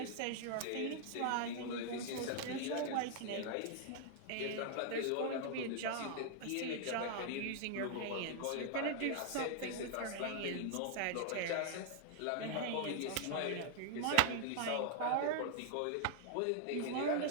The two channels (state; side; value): different; both; correlation 0.00